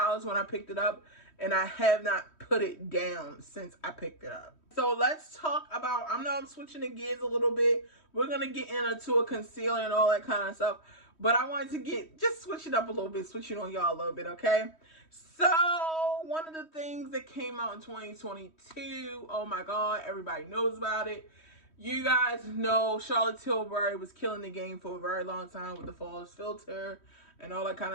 when I picked it up, and I have not put it down since I picked it up. So let's talk about, I know I'm switching the gears a little bit. We're going to get into a concealer and all that kind of stuff. But I wanted to just switch it up a little bit, switch it on y'all a little bit, okay? So one of the things that came out in 2022, oh my God, everybody knows about it. You guys know Charlotte Tilbury was killing the game for a very long time with the Flawless filter and all that kind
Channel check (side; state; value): right; late; 3.1 ms